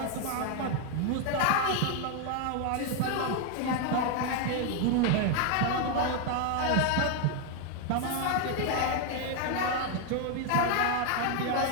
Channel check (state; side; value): different; both; correlation 0.01